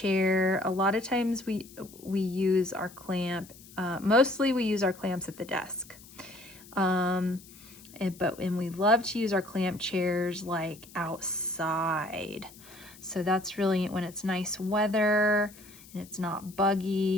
A lot of times we use our clamp, mostly we use our clamps at the desk. And we love to use our clamp chairs like outside. So that's really when it's nice weather and it's not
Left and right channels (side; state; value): left; noise; hiss, 21 dB below the sound